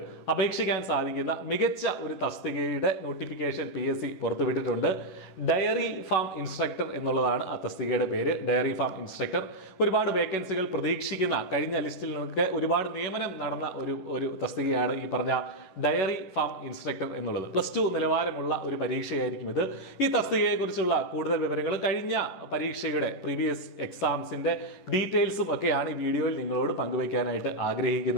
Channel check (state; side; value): late; right; 11 ms